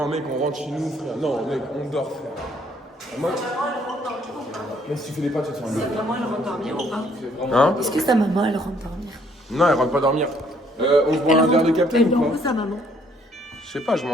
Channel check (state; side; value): normal; both; correlation 0.65